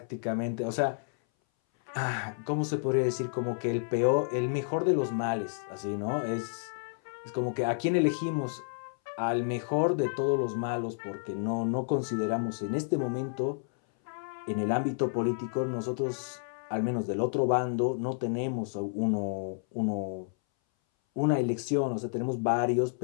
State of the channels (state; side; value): silent; right; 57 dB below the other